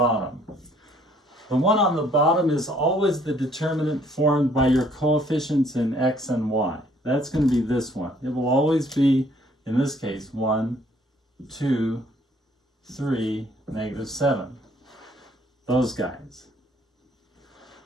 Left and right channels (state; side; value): normal; both; correlation 0.62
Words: The one on the bottom is always the determinant formed by your coefficients in x and y. That's going to be this one. It will always be, in this case, 1, 2, 3, negative 7. Those guys.